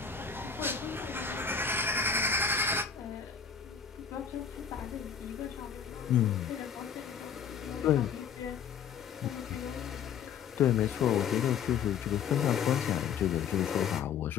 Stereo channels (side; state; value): right; quieter; 7.2 dB